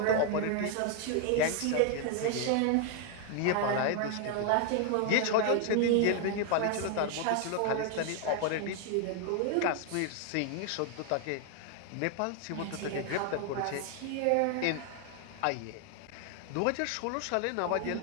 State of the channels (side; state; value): both; different; correlation 0.00